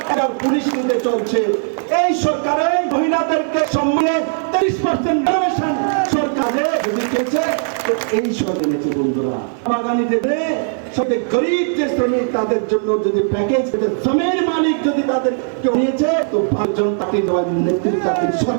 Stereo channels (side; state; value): left; silent; 59 dB below the other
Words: পুলিশ নিতে চলছে। এই সরকারে মহিলাদেরকে সম্মানে 30% সরকারে দিয়েছে। তো এই সব এনেছে বন্ধুরা, বাগানি দেবে সবে গরিব যে শ্রমিক তাদের জন্য যদি প্যাকেজ, জমির মালিক যদি তাদের কেউ নিয়েছে, তো জনতা দেওয়ার নেতৃত্ব